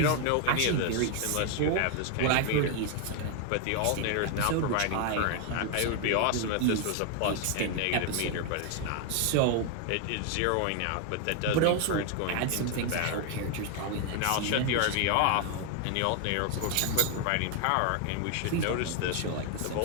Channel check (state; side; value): different; both; correlation 0.00